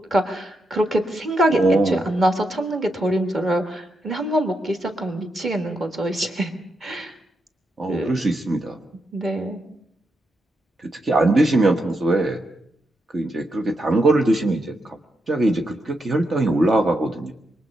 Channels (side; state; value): both; normal; correlation 0.83